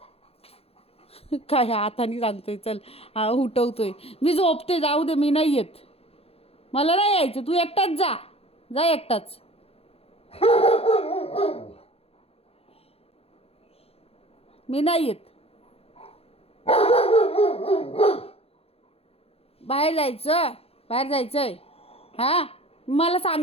काय हाताने सांगतोय चल. हा उठवतोय. मी झोपते, जाऊ दे, मी नाही येत. मला नाही यायचं, तू एकटाच जा. जा एकटाच. मी नाही येत. बाहेर जायचं, बाहेर जायचंय. हां मला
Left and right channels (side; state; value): right; late; 0.29 ms